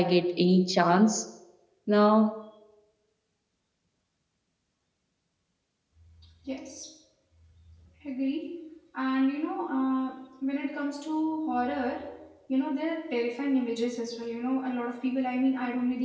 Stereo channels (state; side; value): identical; both; correlation 1.00